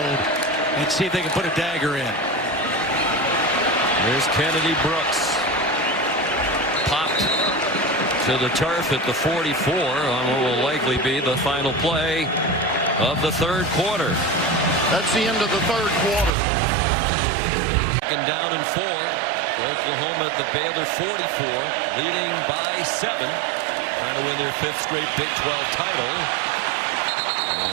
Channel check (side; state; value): left; drops out; at 16.3 s